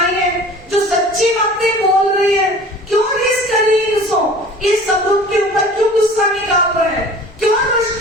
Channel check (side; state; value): both; normal; correlation 0.44